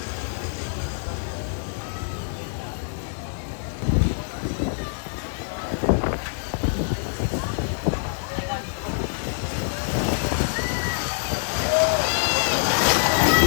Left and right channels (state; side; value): silent; right; digital silence